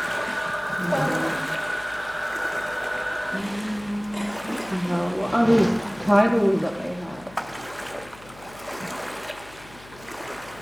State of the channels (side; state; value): left; noise; hum, 21 dB below the sound